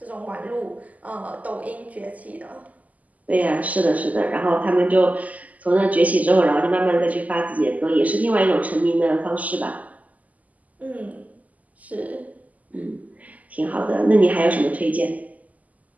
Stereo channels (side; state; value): left; late; 0.074 ms